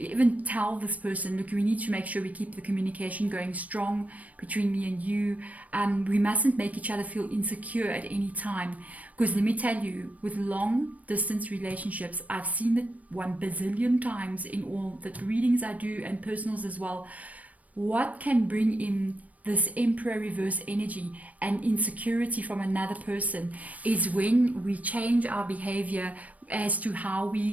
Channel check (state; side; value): late; left; 0.070 ms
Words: tell this person, look, we need to make sure we keep the communication going strong between me and you. We mustn't make each other feel insecure at any time. Because let me tell you, with long distance relationships, I've seen it 1 bazillion times in all the readings I do and personals as well. What can bring in this Emperor reverse energy and insecurity from another person is when we change our behavior as to how we